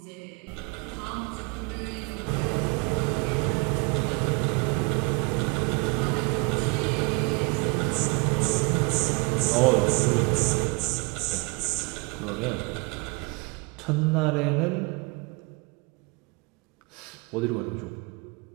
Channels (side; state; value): left; quieter; 30.5 dB